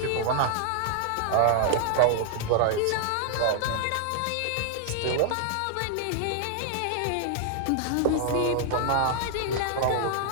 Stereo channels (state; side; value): different; both; correlation 0.00